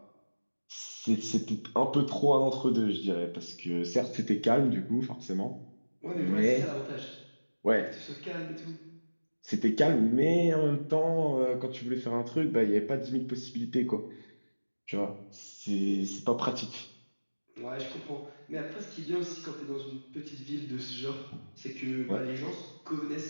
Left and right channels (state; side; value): inverted; both; correlation -1.00